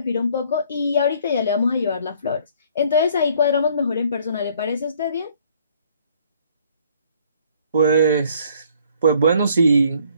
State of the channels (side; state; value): both; inverted; correlation -0.60